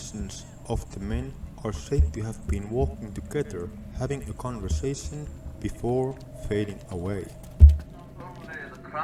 of the men are said to have been walking together, having a conversation before fading away. Only the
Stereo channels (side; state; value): both; identical; correlation 1.00